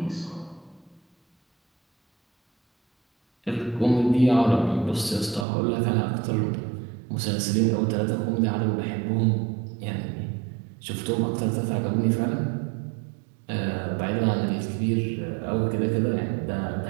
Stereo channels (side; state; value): left; drops out; at 5.5 s